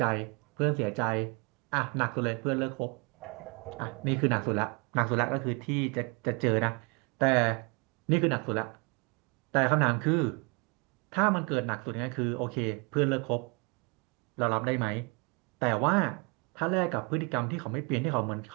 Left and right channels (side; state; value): left; quieter; 31.1 dB